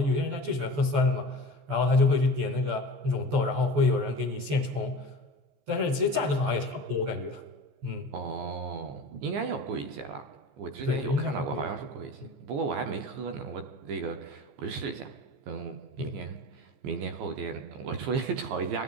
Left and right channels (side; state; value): left; late; 14 ms